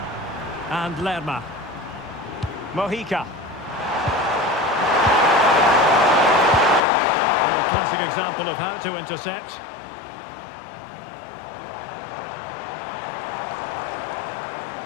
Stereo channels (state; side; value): drops out; right; at 6.8 s